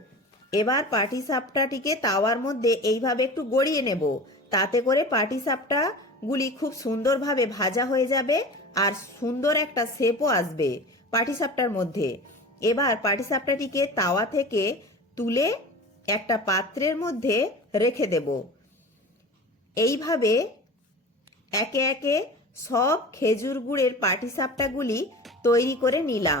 এবার পাটিসাপটাটিকে তাওয়ার মধ্যে এইভাবে একটু গড়িয়ে নেব, তাতে করে পাটিসাপটাগুলি খুব সুন্দরভাবে ভাজা হয়ে যাবে আর সুন্দর একটা শেপও আসবে পাটিসাপটার মধ্যে। এবার পাটিসাপটাটিকে তাওয়া থেকে তুলে একটা পাত্রের মধ্যে রেখে দেব। এইভাবে একে একে সব খেজুর গুড়ের পাটিসাপটাগুলি তৈরি করে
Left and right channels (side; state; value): both; normal; correlation 0.35